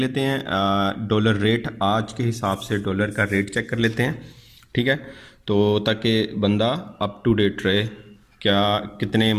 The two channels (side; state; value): both; identical; correlation 1.00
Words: हैं डॉलर रेट, आज के हिसाब से डॉलर का रेट चेक कर लेते हैं, ठीक है। तो ताकि बंदा अप टू डेट रहे, क्या कितने